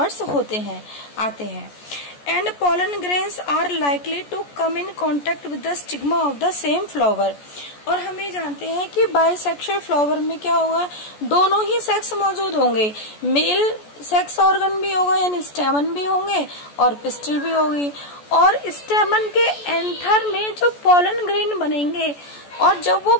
आते हैं। And pollen grains are likely to come in contact with the stigma of the same flower. और हम ये जानते हैं कि बाइसेक्सुअल फ्लावर में क्या होगा, दोनों ही सेक्स मौजूद होंगे, मेल सेक्स ऑर्गन भी होगा यानी स्टेमन भी होंगे और पिस्टिल भी होगी। और स्टेमन के एंथर में जो पॉलन ग्रेन बनेंगे और जब वो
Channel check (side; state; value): right; late; 14 ms